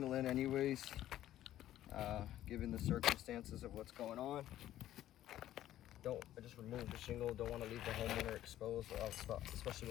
in anyways, given the circumstances of what's going on. I just removed the shingle. Don't want to leave the homeowner exposed, especially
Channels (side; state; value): right; quieter; 13.0 dB